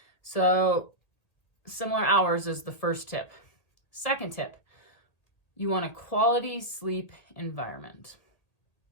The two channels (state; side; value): late; right; 1.8 ms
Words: So similar hours is the first tip. Second tip, you want a quality sleep environment.